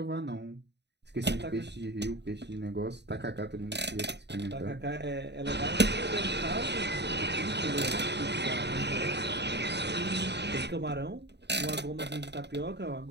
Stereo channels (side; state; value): left; late; 0.50 ms